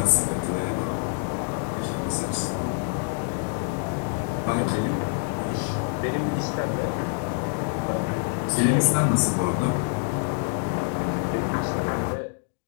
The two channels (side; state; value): right; silent; 61 dB below the other